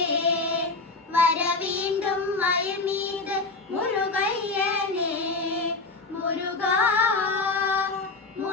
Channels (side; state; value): right; quieter; 3.7 dB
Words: வர வேண்டும் மயில் மீது முருகையனே. முருகா